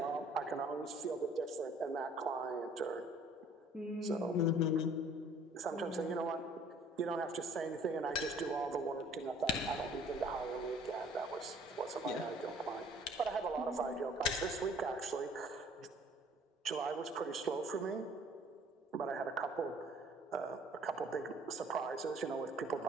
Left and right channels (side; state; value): both; normal; correlation 0.55